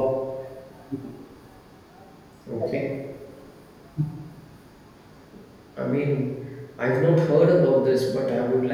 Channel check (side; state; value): both; identical; correlation 1.00